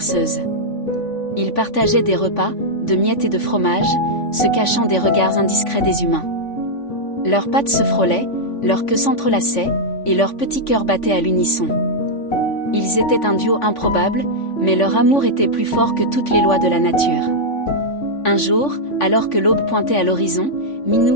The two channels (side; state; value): right; late; 3.5 ms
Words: Ils partageaient des repas, de miettes et de fromage, se cachant des regards indiscrets des humains. Leurs pattes se frôlaient, leurs queues s'entrelaçaient, et leurs petits cœurs battaient à l'unisson. Ils étaient un duo improbable, mais leur amour était plus fort que toutes les lois de la nature. Un jour, alors que l'aube pointait à l'horizon,